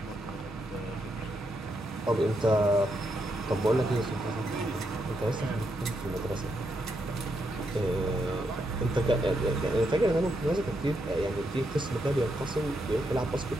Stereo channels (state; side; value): normal; both; correlation 0.80